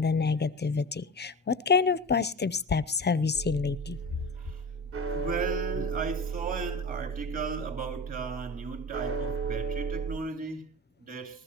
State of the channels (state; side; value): normal; both; correlation 0.30